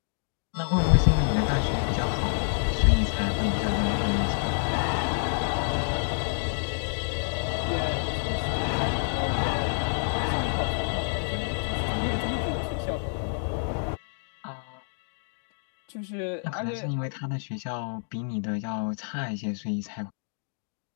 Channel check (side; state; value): right; silent; digital silence